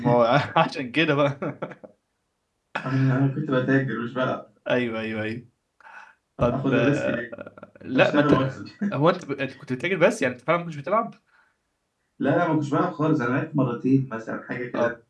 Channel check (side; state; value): both; identical; correlation 1.00